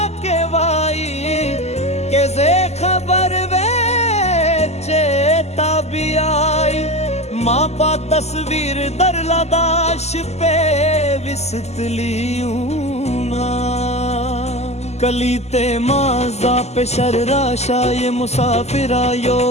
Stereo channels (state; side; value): late; right; 0.32 ms